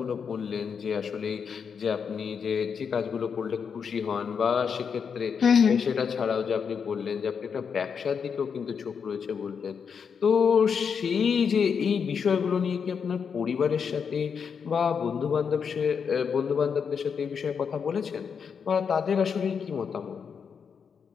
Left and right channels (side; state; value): right; quieter; 6.5 dB